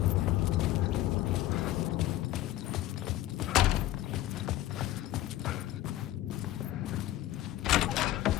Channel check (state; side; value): quieter; right; 14.8 dB